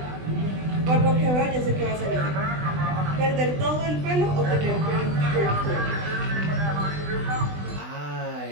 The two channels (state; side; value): late; left; 20 ms